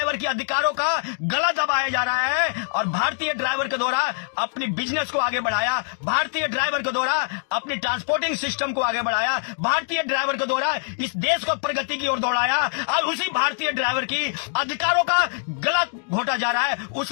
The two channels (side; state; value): right; silent; digital silence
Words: के अधिकारों का गला दबाया जा रहा है और भारतीय ड्राइवर के द्वारा अपने बिजनेस को आगे बढ़ाया, भारतीय ड्राइवर के द्वारा अपने ट्रांसपोर्टिंग सिस्टम को आगे बढ़ाया, भारतीय ड्राइवर के द्वारा इस देश को प्रगति की ओर दौड़ाया। और उसी भारतीय ड्राइवर की अधिकारों का गला घोटा जा रहा है,